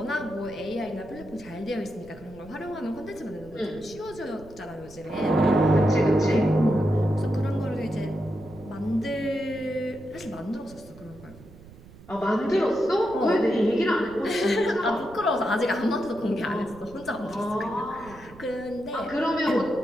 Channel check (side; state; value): right; noise; rumble, 20 dB below the sound